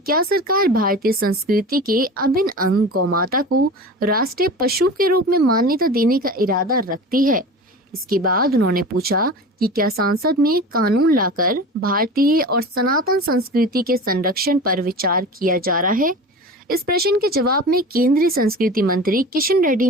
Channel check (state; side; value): normal; both; correlation 0.34